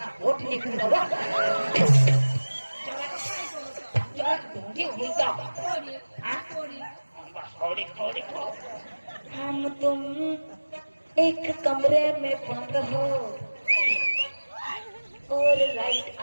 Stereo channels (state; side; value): inverted; both; correlation -1.00